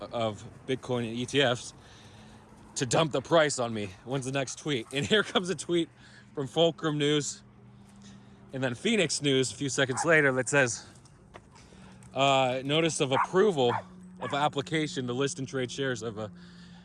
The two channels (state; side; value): identical; both; correlation 1.00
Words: Bitcoin and ETFs to dump the price on me? When's the next tweet? And here comes a tweet from Fulcrum News. And then Phoenix News a few seconds later that says, notice of approval of application to list and trade shares of a